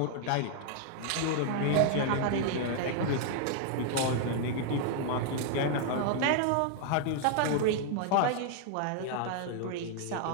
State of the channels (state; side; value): different; both; correlation 0.00